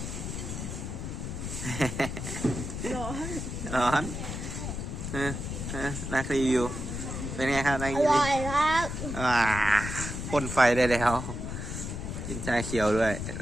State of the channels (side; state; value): left; noise; rumble, 5 dB below the sound